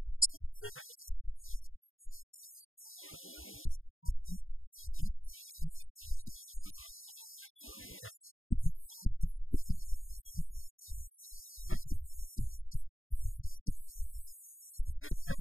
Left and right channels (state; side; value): late; right; 0.59 ms